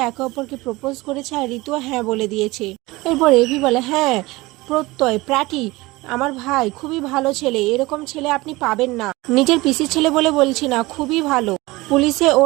একে অপরকে প্রপোজ করেছে, আর ঋতু হ্যাঁ বলে দিয়েছে। এরপর এভি বলে, হ্যাঁ প্রত্যয় প্র্যাটি আমার ভাই খুবই ভালো ছেলে, এরকম ছেলে আপনি পাবেন না। নিজের পিসির ছেলে বলে বলছি না, খুবই ভালো, পুলিশে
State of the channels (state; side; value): quieter; left; 21.2 dB